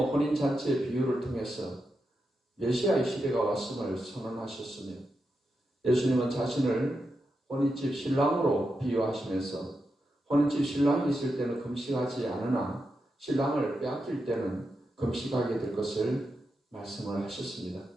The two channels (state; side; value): normal; both; correlation 0.87